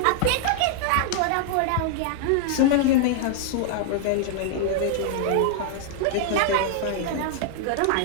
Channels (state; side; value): different; both; correlation -0.01